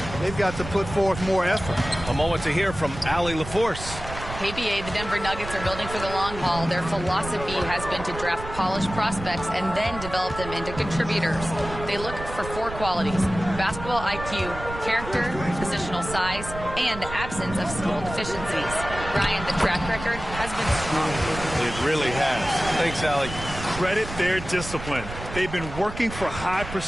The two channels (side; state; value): right; noise; rumble, 10 dB below the sound